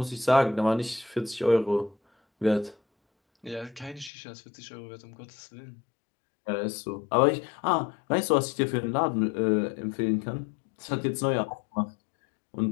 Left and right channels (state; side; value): drops out; right; at 4.1 s